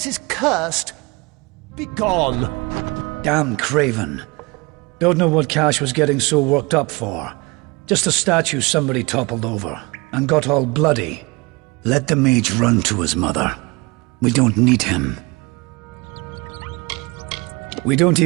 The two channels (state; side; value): quieter; left; 25.9 dB